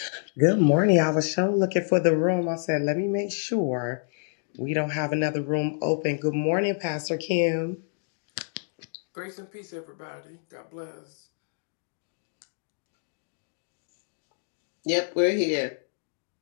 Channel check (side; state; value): right; silent; digital silence